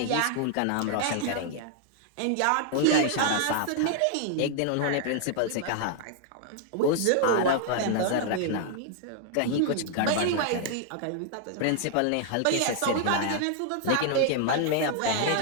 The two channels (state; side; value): different; both; correlation 0.00